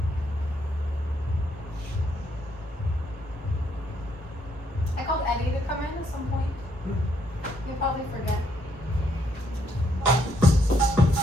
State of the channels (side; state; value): both; normal; correlation 0.73